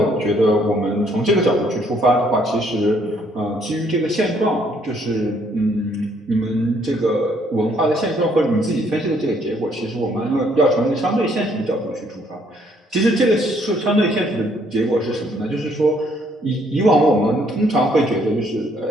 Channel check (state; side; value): normal; both; correlation 0.67